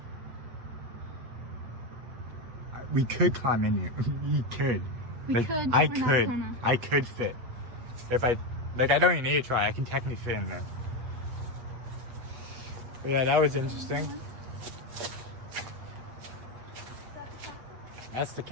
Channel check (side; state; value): left; late; 8.2 ms